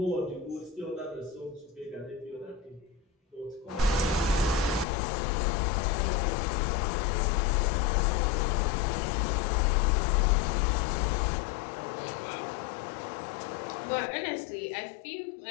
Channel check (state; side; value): drops out; right; at 4.9 s